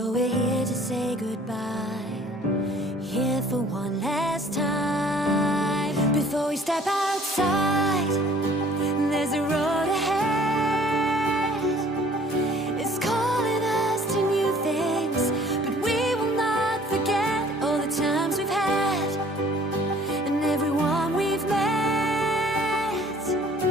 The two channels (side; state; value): both; normal; correlation 0.54